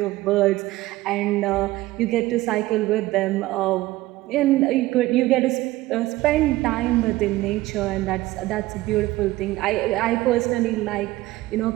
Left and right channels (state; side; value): quieter; left; 17.8 dB